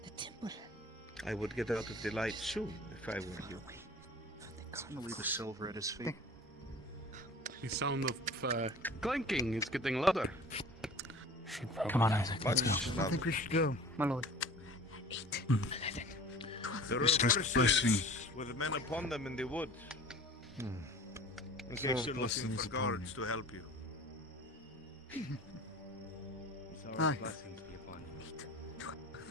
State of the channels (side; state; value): both; normal; correlation 0.43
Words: The temple. I would get out of the light soon, if I were you. Leave the silver at his feet. The sound of clanking is getting louder. Come on, Isaac, let's go. I think we should go, my lord. 8, 11, There are Mr. horses Blessing. with men upon them in the wood. In case you're looking for guards to help you. Aye. Blessings be upon